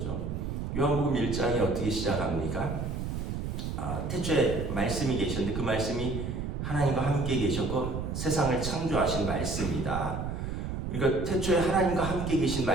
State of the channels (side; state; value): right; noise; rumble, 4 dB below the sound